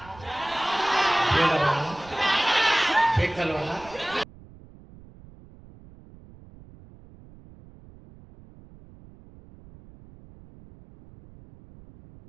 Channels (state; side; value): noise; right; rumble, 22 dB below the sound